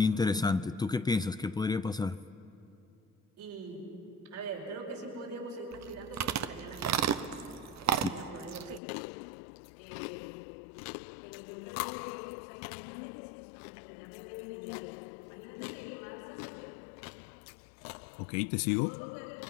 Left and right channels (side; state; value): right; drops out; at 8.8 s